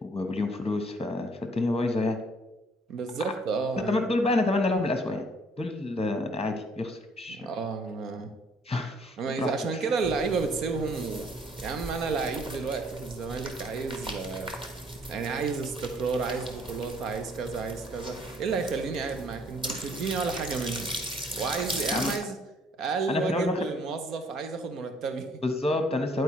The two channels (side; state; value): both; normal; correlation 0.61